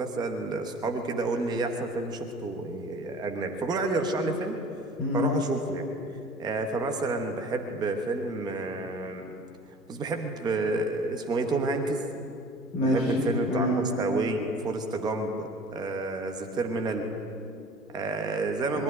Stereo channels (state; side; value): normal; both; correlation 0.46